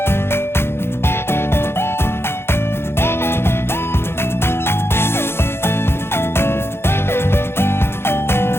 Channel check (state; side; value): late; right; 0.12 ms